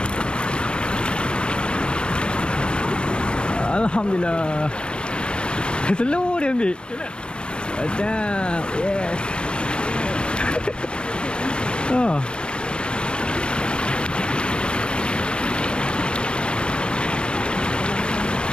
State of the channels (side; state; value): right; late; 0.056 ms